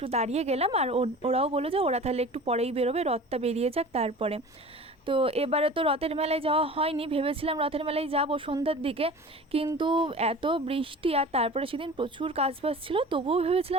দাঁড়িয়ে গেলাম, আর ওরাও বললো যে ওরা তাহলে একটু পরেই বেরোবে, রথটা বেরিয়ে যাক তারপরে। তো এবারে তো রথের মেলায় যাওয়া হয়নি, ভেবেছিলাম রথের মেলায় যাবো সন্ধ্যার দিকে, কিন্তু এত বৃষ্টি আর তারপরে সেদিন প্রচুর কাজবাজ ছিল, তবুও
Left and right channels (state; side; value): normal; both; correlation 0.39